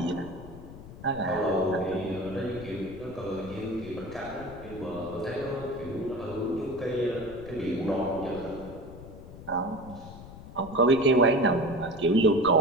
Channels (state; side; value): noise; left; rumble, 15 dB below the sound